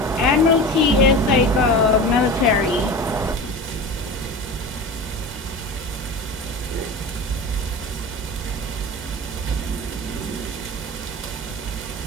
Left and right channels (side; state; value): both; normal; correlation 0.31